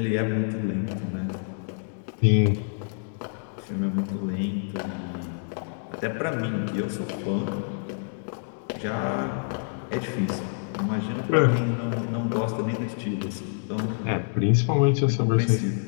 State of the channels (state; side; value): silent; right; digital silence